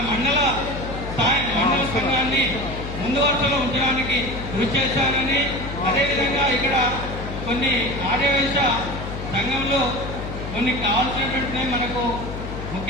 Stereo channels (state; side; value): noise; left; hum, 8 dB below the sound